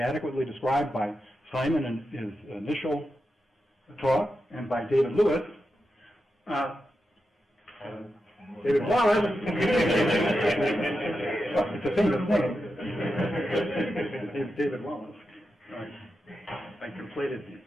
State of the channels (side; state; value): both; normal; correlation 0.89